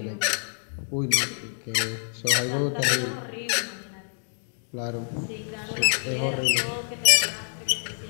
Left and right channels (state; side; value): silent; right; digital silence